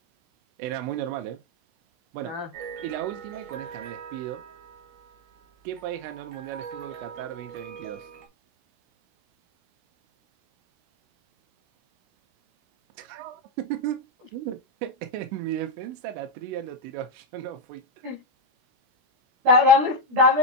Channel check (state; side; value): late; left; 16 ms